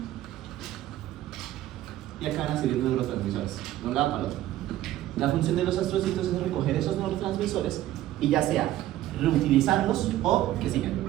y acá van a salir neurotransmisores, de un lado para el otro. La función de los astrocitos es recoger esos neurotransmisores y ya sea reutilizarlos o que sigan.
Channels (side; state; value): left; quieter; 14.2 dB